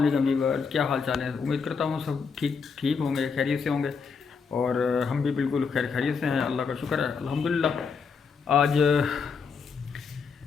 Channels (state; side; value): quieter; right; 5.5 dB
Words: व्यूअर्स, क्या हाल चाल है। उम्मीद करता हूँ सब ठीक होंगे, खैरियत से होंगे। और हम भी बिल्कुल खैरियत से हैं, अल्लाह का शुक्र है, अल्हम्दुलिल्लाह।